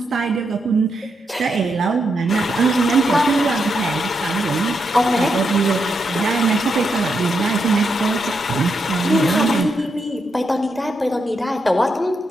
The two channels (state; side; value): normal; both; correlation 0.82